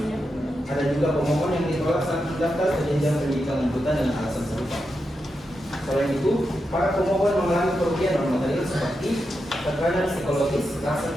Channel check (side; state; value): both; normal; correlation 0.87